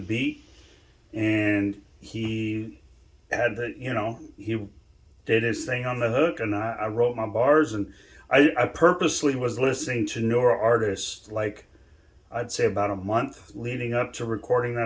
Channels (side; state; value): both; identical; correlation 1.00